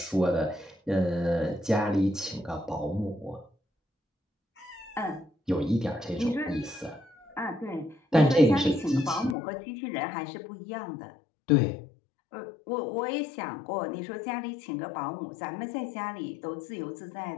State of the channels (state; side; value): drops out; right; at 9.3 s